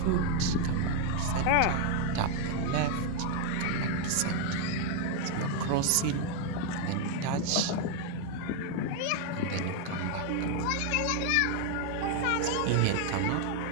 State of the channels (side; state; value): both; different; correlation 0.01